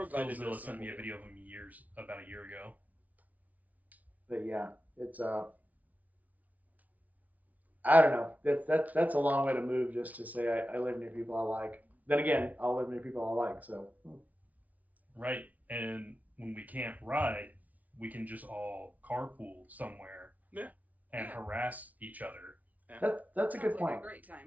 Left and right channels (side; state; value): left; late; 0.073 ms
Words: Phil guided Zilla this sent me a one. video of him about a year ago. but yeah, it's I don't know. That's a long way to move just to say I live near people I like. Then again, I'll live near people I like. So Right. And when we can't ride, we can just all carpool somewhere. Yeah. And Yeah. harass each other. that's a good Sounds like point. a great